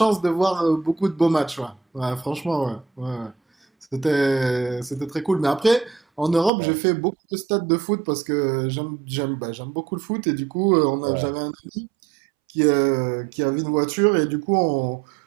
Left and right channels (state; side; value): drops out; left; at 6.5 s